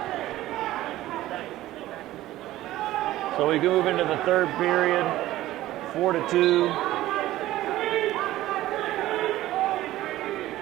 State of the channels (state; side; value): quieter; left; 15.5 dB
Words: So we move into the third period, 4-2.